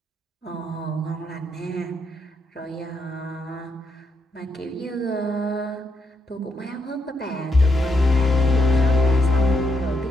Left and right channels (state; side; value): normal; both; correlation 0.79